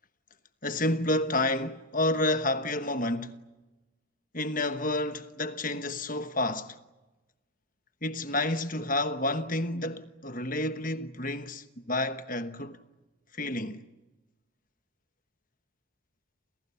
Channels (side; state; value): both; normal; correlation 0.07